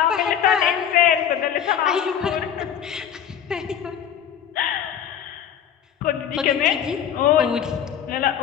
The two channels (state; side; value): quieter; right; 9.1 dB